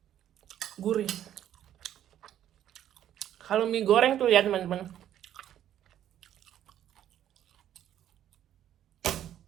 gurih. Kalau mie goreng tuh ya teman-teman,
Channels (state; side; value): quieter; left; 11.1 dB